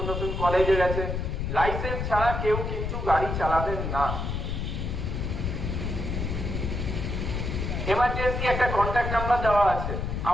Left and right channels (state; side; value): noise; left; rumble, 2 dB below the sound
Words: নতুন কলেজে গেছে, লাইসেন্স ছাড়া কেউ কিন্তু গাড়ি চালাবেন না। এমার্জেন্সি একটা কন্ট্যাক্ট নাম্বার দেওয়া আছে,